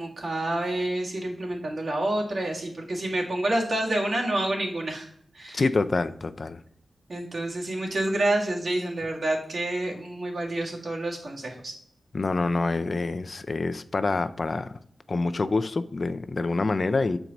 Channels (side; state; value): both; normal; correlation 0.93